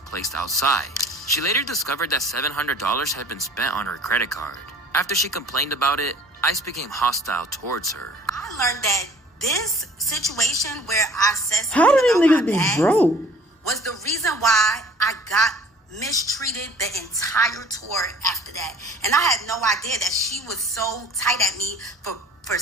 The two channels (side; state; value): both; normal; correlation 0.49